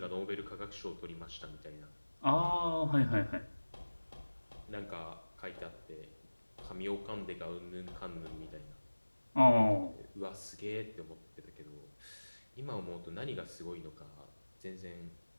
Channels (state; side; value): inverted; both; correlation -1.00